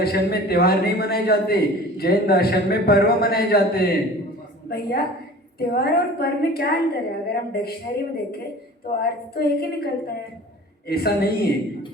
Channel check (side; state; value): both; normal; correlation 0.42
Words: में त्योहार नहीं मनाए जाते, जैन दर्शन में पर्व मनाए जाते हैं। भैया, त्योहार और पर्व में क्या अंतर है? अगर हम डिक्शनरी में देखें तो अर्थ तो एक ही निकलता है। ऐसा नहीं है।